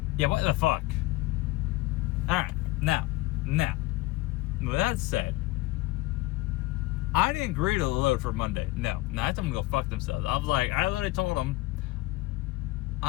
Yeah, what the fuck? Alright, now, with that said, I didn't agree to the load for Monday. No, I told them to go fuck themselves. I was like, I literally told them,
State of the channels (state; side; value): quieter; right; 19.6 dB